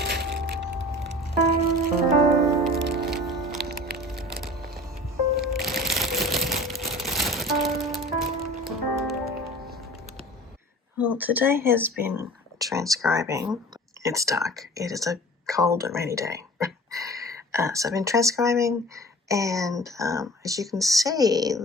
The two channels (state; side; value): normal; both; correlation 0.41